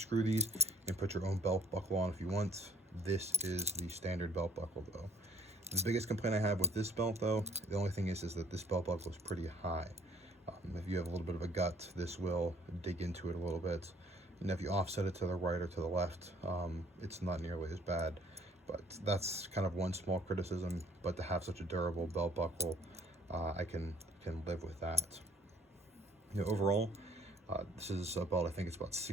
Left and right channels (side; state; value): both; normal; correlation 0.58